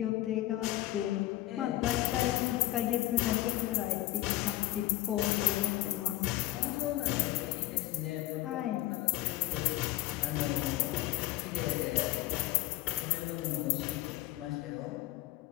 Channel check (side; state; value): right; quieter; 16.5 dB